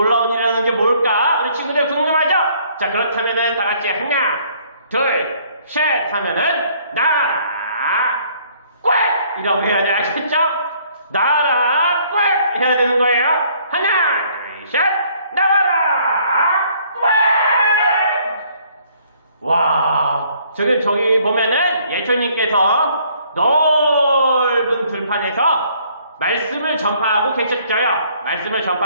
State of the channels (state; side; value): inverted; both; correlation -0.62